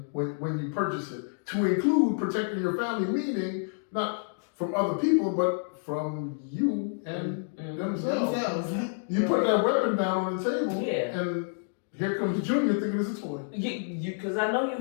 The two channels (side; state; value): right; silent; digital silence